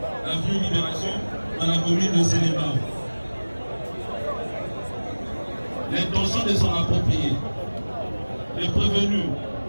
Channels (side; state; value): both; inverted; correlation -1.00